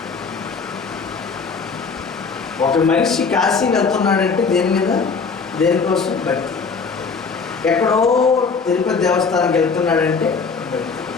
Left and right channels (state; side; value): quieter; right; 5.1 dB